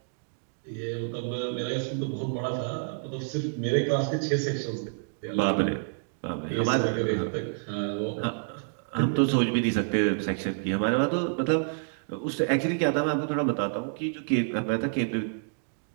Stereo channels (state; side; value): silent; left; digital silence